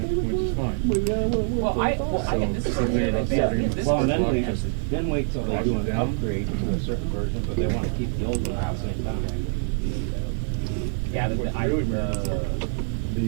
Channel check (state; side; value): silent; left; 62 dB below the other